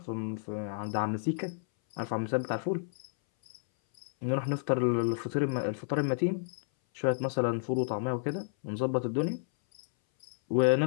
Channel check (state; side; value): silent; right; 57 dB below the other